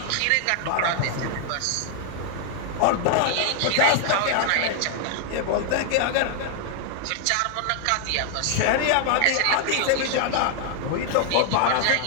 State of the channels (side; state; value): both; different; correlation 0.00